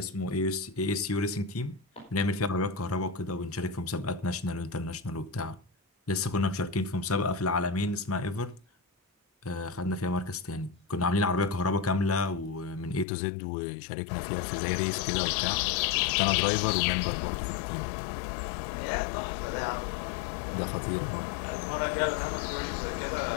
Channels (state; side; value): drops out; right; at 13.1 s